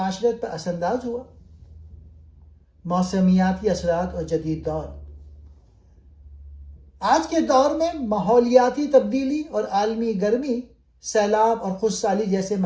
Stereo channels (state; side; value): identical; both; correlation 1.00